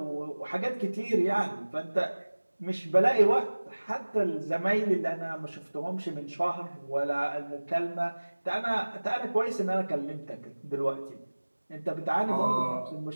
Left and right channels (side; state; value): both; inverted; correlation -1.00